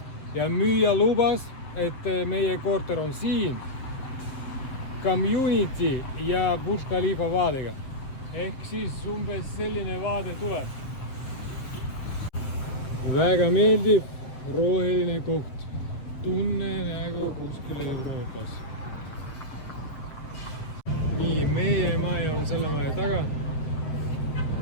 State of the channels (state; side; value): late; right; 7.8 ms